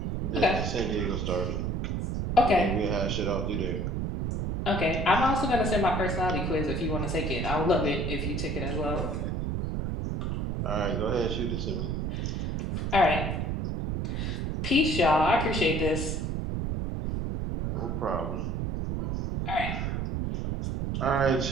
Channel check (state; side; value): noise; right; rumble, 1 dB below the sound